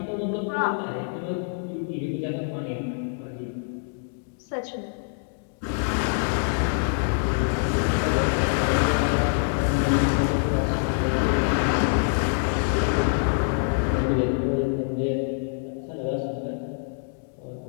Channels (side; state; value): right; silent; digital silence